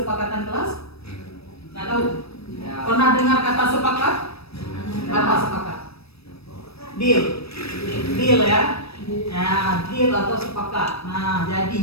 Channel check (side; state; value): right; late; 0.78 ms